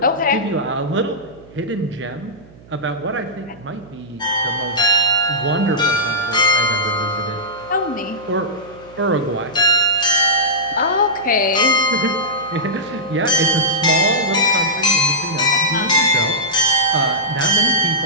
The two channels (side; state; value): right; noise; hum, 23 dB below the sound